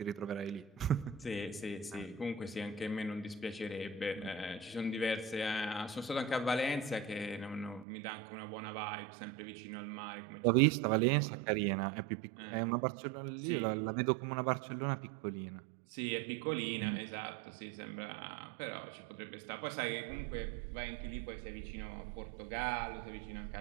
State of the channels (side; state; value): left; drops out; at 7.9 s